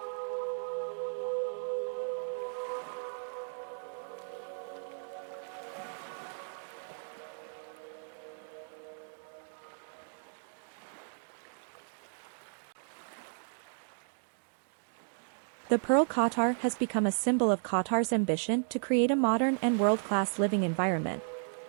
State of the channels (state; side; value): silent; left; digital silence